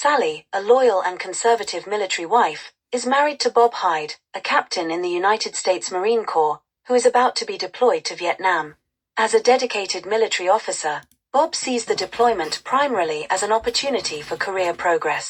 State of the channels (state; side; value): identical; both; correlation 1.00